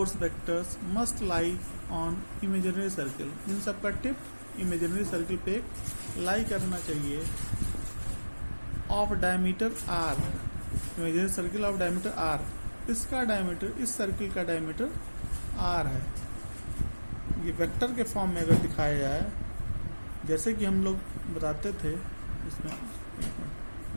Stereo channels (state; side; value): inverted; both; correlation -1.00